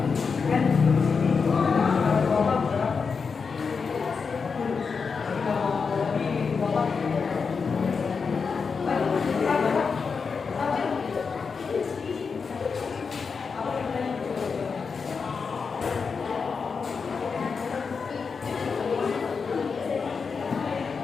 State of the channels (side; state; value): right; quieter; 5.3 dB